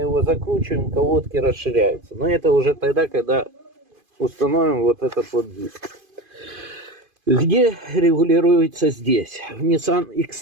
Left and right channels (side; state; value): left; late; 2.5 ms